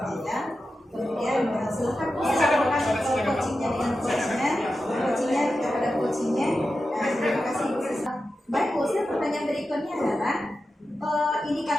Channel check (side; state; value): both; normal; correlation 0.91